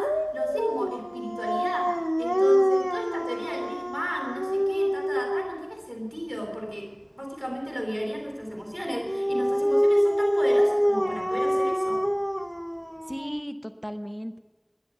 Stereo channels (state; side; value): identical; both; correlation 1.00